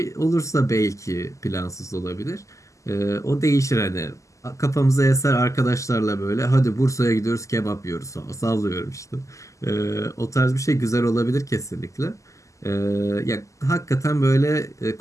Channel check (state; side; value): late; right; 0.16 ms